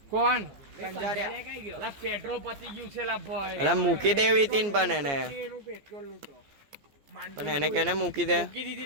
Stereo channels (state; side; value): late; left; 14 ms